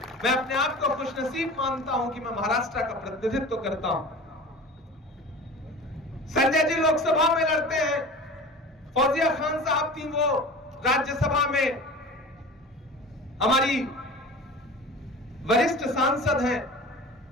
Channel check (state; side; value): normal; both; correlation 0.37